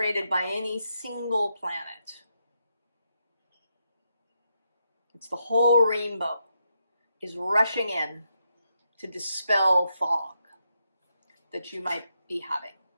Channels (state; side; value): inverted; both; correlation -0.82